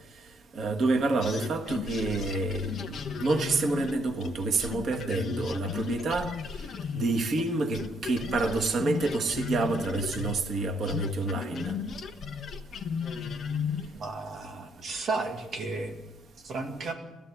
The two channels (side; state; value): both; normal; correlation 0.72